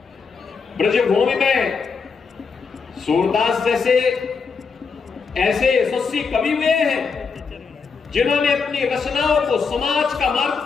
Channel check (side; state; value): right; quieter; 5.2 dB